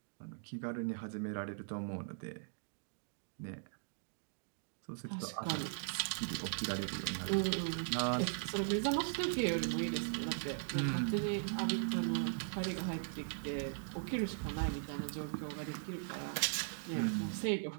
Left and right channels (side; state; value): left; silent; digital silence